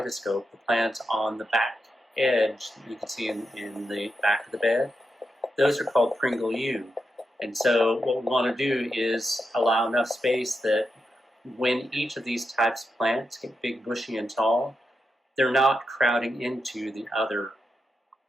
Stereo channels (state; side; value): normal; both; correlation 0.86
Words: the plants on the back edge that you can see in the back of the bed. Those are called Pringle U. And so what we want to do is allow enough space that when each of these types of plants get big, bushy, and tall, they're not crowding into the other